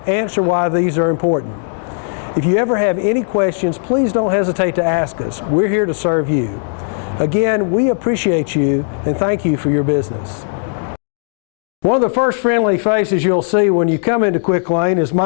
answer why these are important. If you ever have any questions, please don't hesitate to ask us. We're here to serve you. Again, we appreciate you and thank you for your business. One of the first friendly faces you'll see when you come into QuickLane is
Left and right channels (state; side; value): silent; right; digital silence